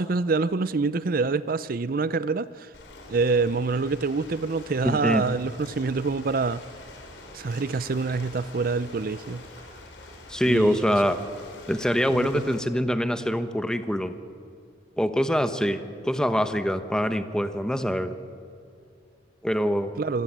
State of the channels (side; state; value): both; normal; correlation 0.65